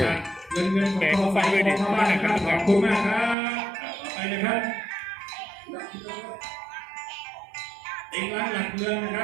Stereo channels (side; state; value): left; drops out; at 3.4 s